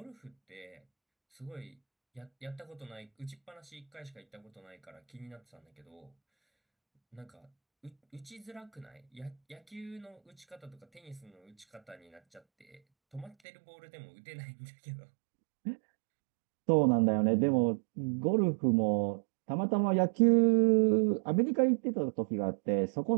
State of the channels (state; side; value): drops out; left; at 13.4 s